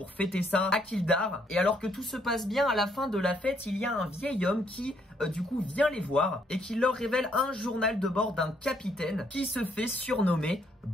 fêter ça à Kildare. Et alors que tout se passe bien, à la fin de la fête, il y a un vieil homme qui du coup vient les voir et qui leur révèle un journal de bord d'un capitaine qui se fait surnommer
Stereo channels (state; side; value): normal; both; correlation 0.70